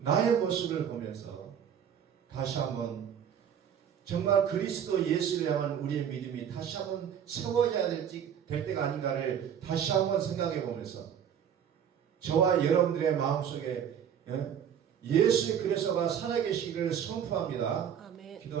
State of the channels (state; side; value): quieter; left; 8.7 dB